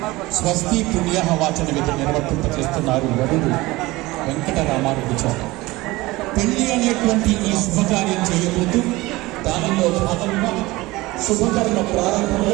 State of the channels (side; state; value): left; quieter; 20.4 dB